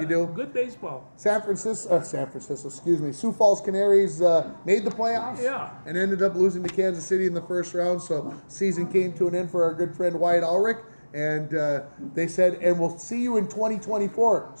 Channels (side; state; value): both; inverted; correlation -1.00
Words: do. Good baseball. San Francisco, excuse me. Sioux Falls Canaries made the playoffs. Yeah. And ended up losing to Kansas City in the first round. So season came to an end for our good friend Wyatt Ulrich. And they said, and we'll see you in 2024.